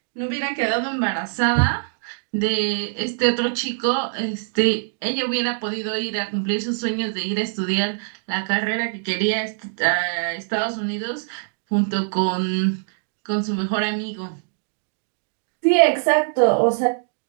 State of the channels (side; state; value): left; silent; digital silence